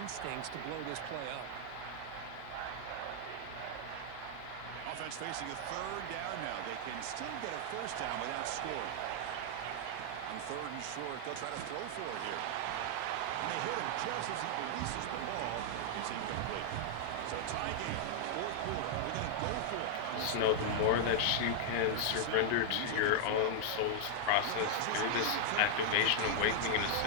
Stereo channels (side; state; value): both; different; correlation -0.01